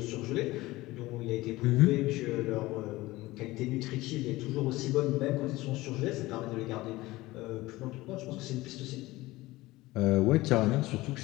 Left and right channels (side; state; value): right; quieter; 19.0 dB